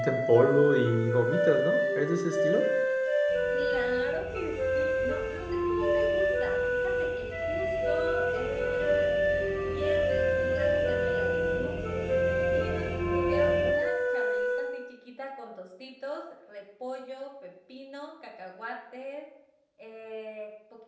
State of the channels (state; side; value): identical; both; correlation 1.00